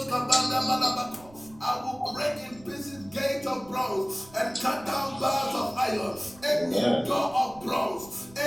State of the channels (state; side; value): noise; right; rumble, 23 dB below the sound